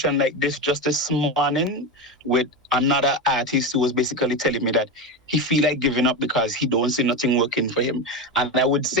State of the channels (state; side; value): normal; both; correlation 0.18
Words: like this just this morning with another artist who was basically telling me that he feel like giving up because he don't see nothing working for him. And I would